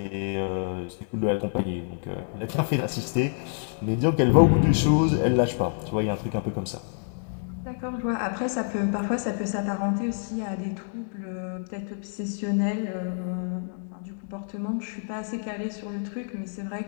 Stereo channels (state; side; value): silent; right; digital silence